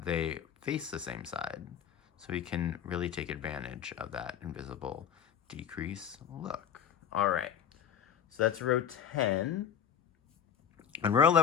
they face the same side. So we can really take advantage of that invisible decrease look. All right, so that's row 10. And row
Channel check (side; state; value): right; quieter; 8.5 dB